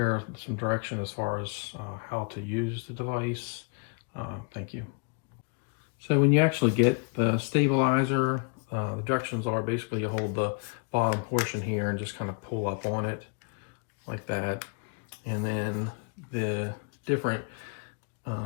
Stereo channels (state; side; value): quieter; right; 37.8 dB